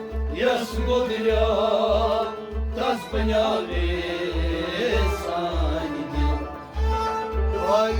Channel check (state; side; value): identical; both; correlation 1.00